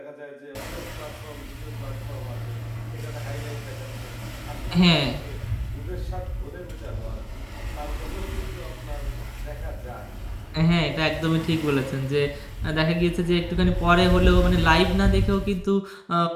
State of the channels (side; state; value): both; identical; correlation 1.00